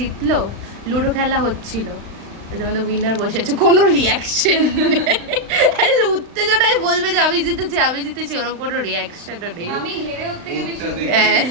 লুডো খেলা হচ্ছিল, আমাদের উইনার বসে আছে, কোনো রিয়াকশন উত্তেজনায় বলবে যে আমি জিতেছি আমি জিতেছি, ওরকম কোনো রিয়াকশনও নেই। আমি হেরে ওর থেকে বেশি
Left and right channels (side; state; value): left; late; 35 ms